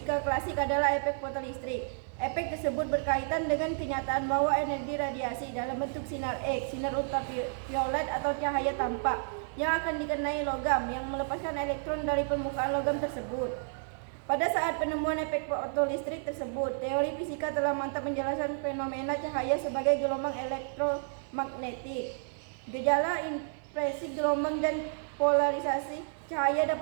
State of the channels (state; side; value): silent; left; 57 dB below the other